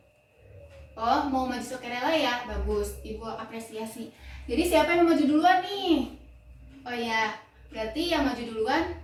Oh, mau maju sukarela ya, bagus, Ibu apresiasi. Jadi siapa yang mau maju duluan nih? Oh ya, berarti yang maju duluan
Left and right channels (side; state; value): both; identical; correlation 1.00